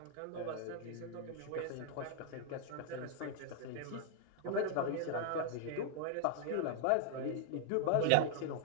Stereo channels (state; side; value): different; both; correlation 0.00